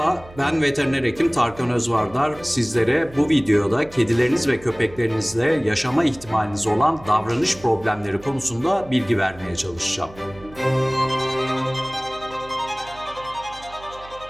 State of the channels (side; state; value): right; noise; hum, 20 dB below the sound